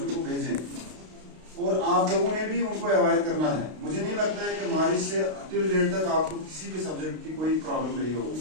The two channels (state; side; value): late; left; 32 ms